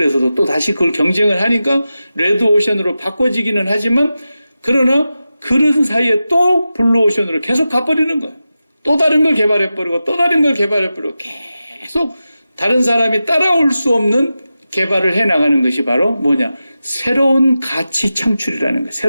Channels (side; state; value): both; inverted; correlation -0.92